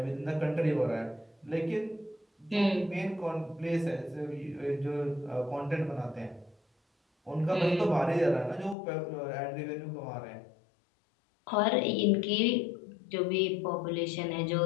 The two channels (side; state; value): right; drops out; at 8.8 s